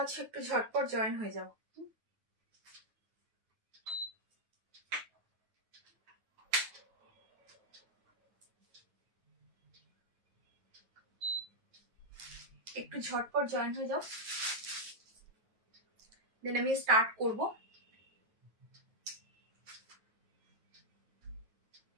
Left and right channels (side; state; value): left; late; 9.3 ms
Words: একটু ঝটপট জয়েন হয়ে যাও। একটু ঝটপট জয়েন হয়ে যাও, দেন আমি স্টার্ট করব।